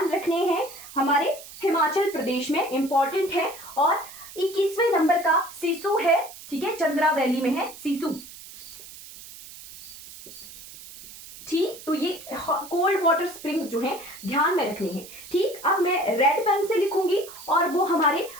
रखने हैं, हमारे हिमाचल प्रदेश में इंपॉर्टेंट है। और 21वें नंबर का सिसु है। ठीक है, चंद्रा वैली में है सिसु। ठीक, तो ये कोल्ड वाटर स्प्रिंग्स जो है ध्यान में रखने हैं। ठीक, अब मैं रेड पेन से लिखूंगी और वो हमारे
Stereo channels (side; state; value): right; noise; hiss, 16 dB below the sound